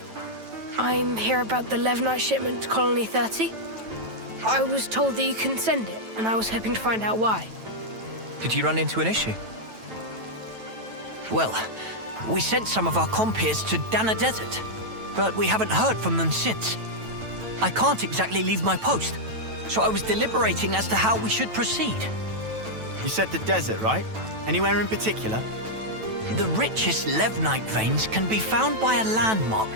I'm here about the Levnite shipment to Colony 30. I was told that you couldn't send it, and I was hoping to find out why. Did you run into an issue? Well, we sent some of our compeers to Dana Desert, but we haven't heard from them since. I can't exactly leave my post, so I was deliberating as to how we should proceed. You said the desert, right? Anywhere in particular? The richest Levnite veins can be found by a landmark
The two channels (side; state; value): left; late; 9.1 ms